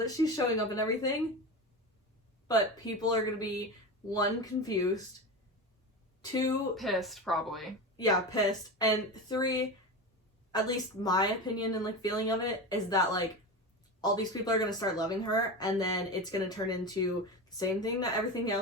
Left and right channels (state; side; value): normal; both; correlation 0.24